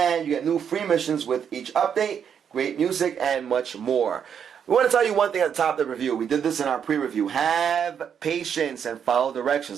you get new free missions with each update, great music, and much more. We want to tell you one thing at the top of the review. We did this in our pre-review. Have patience and follow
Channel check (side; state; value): left; quieter; 7.9 dB